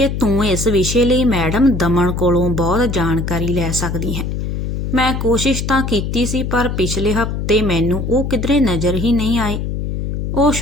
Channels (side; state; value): left; noise; hum, 3 dB below the sound